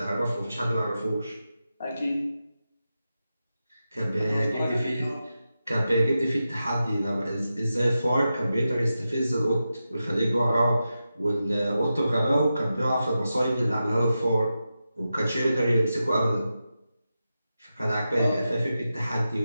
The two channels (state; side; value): inverted; both; correlation -0.91